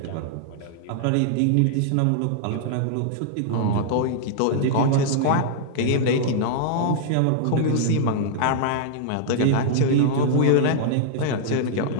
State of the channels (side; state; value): both; different; correlation -0.02